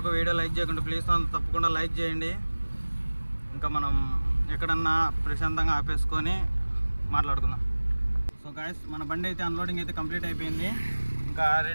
వీడియో లైక్ చేయకుండా ప్లీజ్ తప్పకుండా లైక్ చేయండి. ఇంకా మనం ఎక్కడన్నా ప్రశాంతంగా ఆపేసుకొని మాట్లాడుకుందాం. సో గాయస్ మన బండి అయితే అన్లోడింగ్ అయితే కంప్లీట్ అయిపోయింది. ఇంకా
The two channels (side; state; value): both; inverted; correlation -1.00